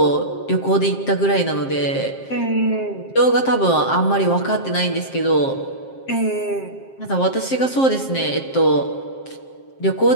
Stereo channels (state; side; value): late; right; 7.5 ms